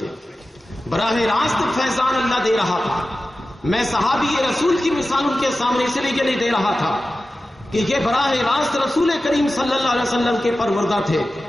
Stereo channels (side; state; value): both; normal; correlation 0.94